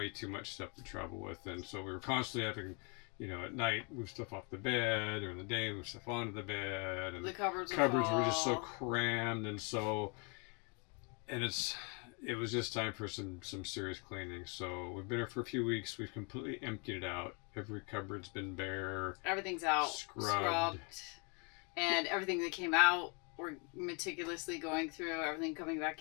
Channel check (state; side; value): quieter; right; 34.1 dB